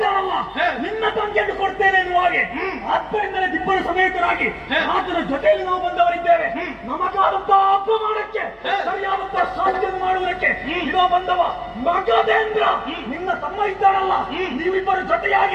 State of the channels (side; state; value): both; identical; correlation 1.00